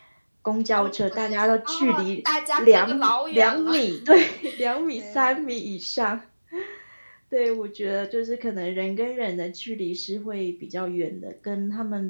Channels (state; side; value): inverted; both; correlation -1.00